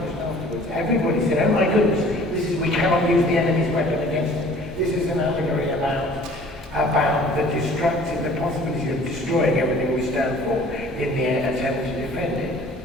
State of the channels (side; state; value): both; normal; correlation 0.51